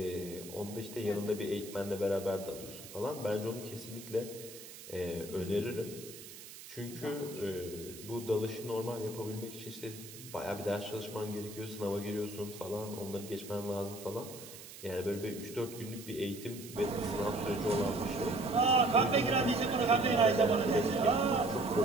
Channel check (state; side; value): noise; right; hiss, 15 dB below the sound